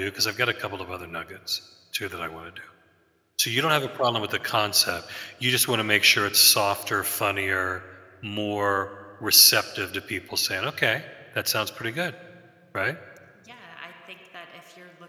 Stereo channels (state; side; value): identical; both; correlation 1.00